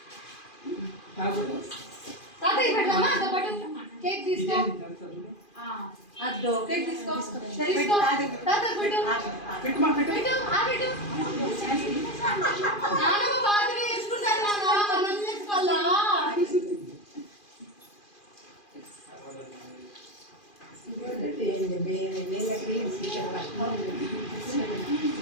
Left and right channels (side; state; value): right; late; 2.4 ms